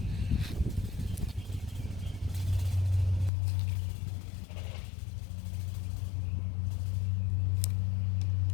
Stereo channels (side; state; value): right; drops out; at 3.3 s